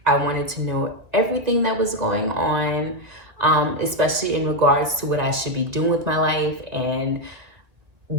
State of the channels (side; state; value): left; late; 1.8 ms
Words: I wanted to know everything that was going on, especially in regards to what I should be doing with my life and